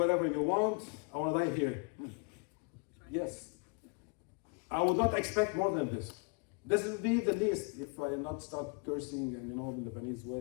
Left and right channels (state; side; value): quieter; right; 34.0 dB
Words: you want. I want to die here. Yes. I would not expect more than this. This will be the least if I not start cursing and in the Lebanese